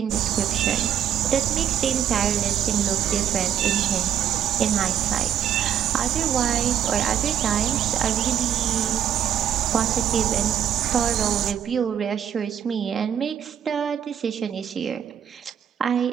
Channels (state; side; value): quieter; left; 9.4 dB